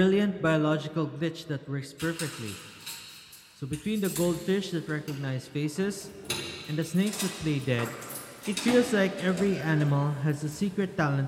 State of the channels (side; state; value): both; identical; correlation 1.00